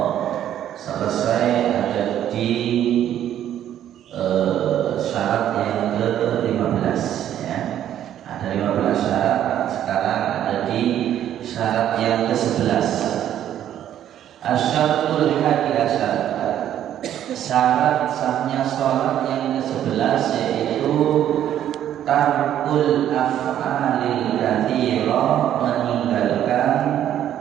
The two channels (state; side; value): quieter; left; 11.0 dB